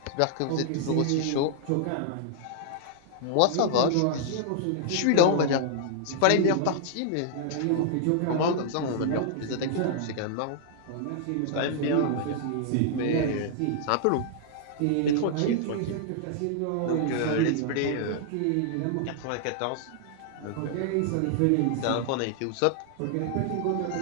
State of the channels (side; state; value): both; different; correlation -0.01